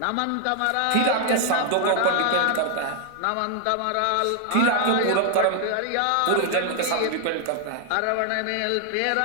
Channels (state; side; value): different; both; correlation 0.00